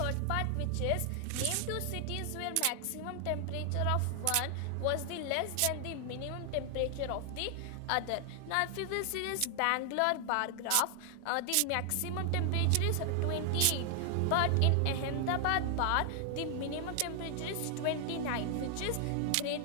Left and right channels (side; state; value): both; different; correlation 0.00